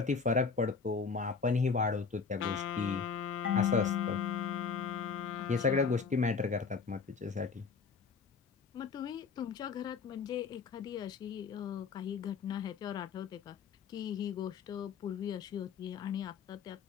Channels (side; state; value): right; quieter; 5.4 dB